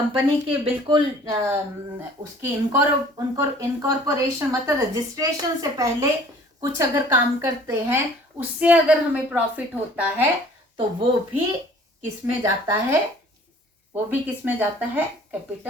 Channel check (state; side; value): normal; both; correlation 0.52